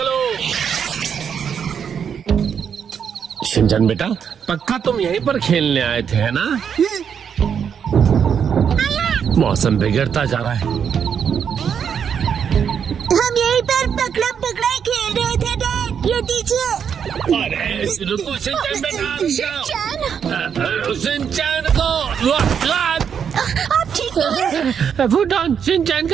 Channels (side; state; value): left; quieter; 7.5 dB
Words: शिनचैन बेटा, पक्का तुम यहीं पर खेलने आए थे, है ना? मौसम बिगड़ता जा रहा है। हम यहीं पर पकड़म पकड़ाई खेल रहे थे डैड। ये दीजिए। अरे रुको शिनचैन बेटा। शिनचैन को आप ठीक तो हैं? फुटॉन, शिनचैन